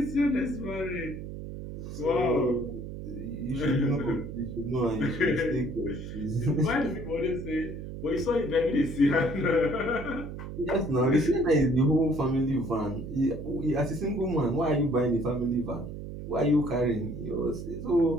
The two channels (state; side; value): noise; right; hum, 9 dB below the sound